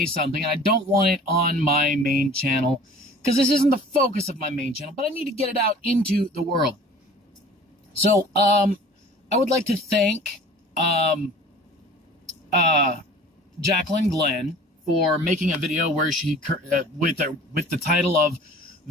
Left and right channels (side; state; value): both; normal; correlation 0.46